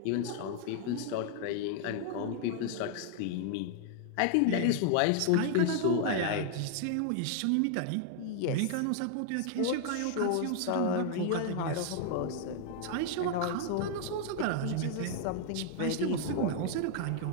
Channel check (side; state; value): both; different; correlation 0.00